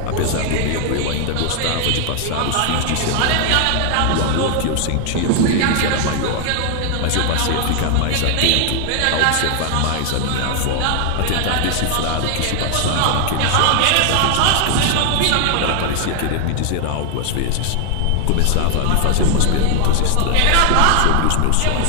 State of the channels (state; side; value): different; both; correlation 0.00